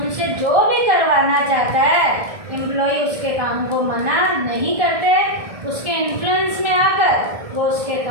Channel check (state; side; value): late; left; 1.7 ms